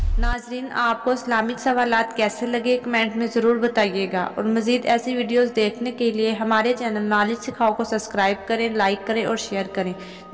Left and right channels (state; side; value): identical; both; correlation 1.00